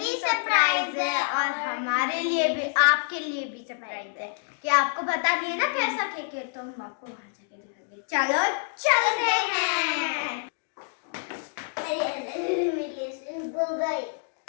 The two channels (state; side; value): silent; right; digital silence